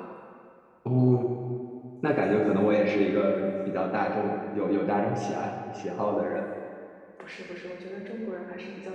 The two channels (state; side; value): identical; both; correlation 1.00